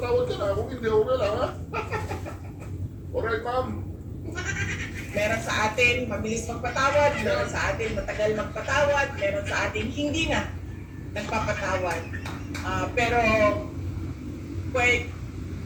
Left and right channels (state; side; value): identical; both; correlation 1.00